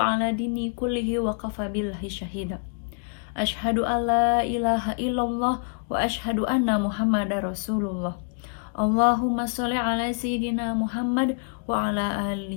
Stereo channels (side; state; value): right; silent; 57 dB below the other